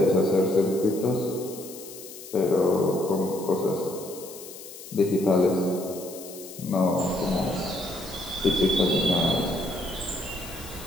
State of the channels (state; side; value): noise; left; hiss, 15 dB below the sound